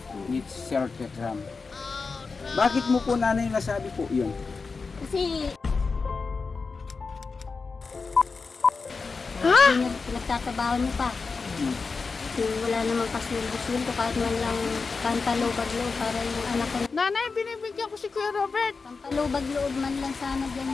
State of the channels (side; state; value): right; quieter; 4.5 dB